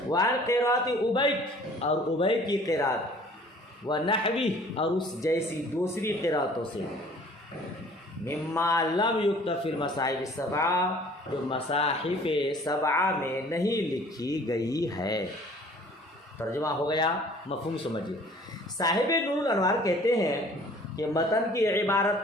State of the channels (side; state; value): both; normal; correlation 0.52